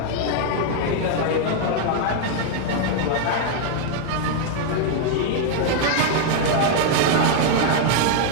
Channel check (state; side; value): different; both; correlation 0.00